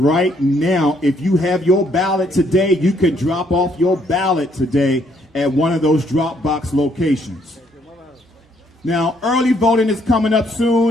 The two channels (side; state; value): both; normal; correlation 0.68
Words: now. If you have your ballot today, you can drop off your ballot today at one of those drop box locations. Now, early voting is coming up